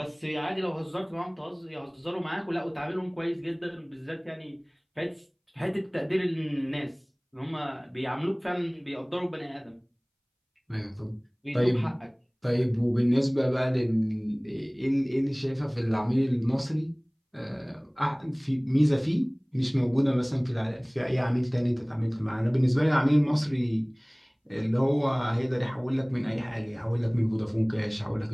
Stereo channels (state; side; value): identical; both; correlation 1.00